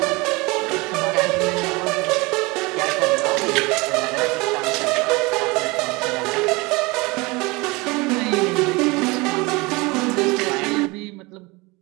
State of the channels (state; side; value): quieter; left; 24.7 dB